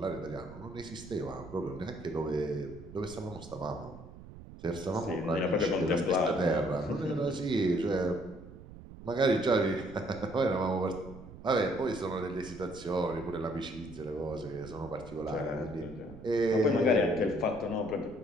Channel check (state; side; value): noise; right; rumble, 16 dB below the sound